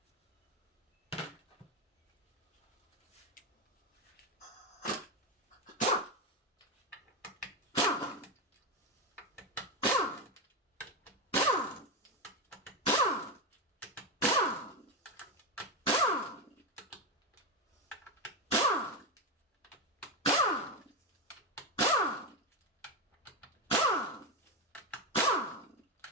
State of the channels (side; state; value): both; normal; correlation 0.12